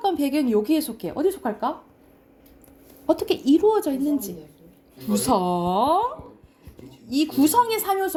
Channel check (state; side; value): identical; both; correlation 1.00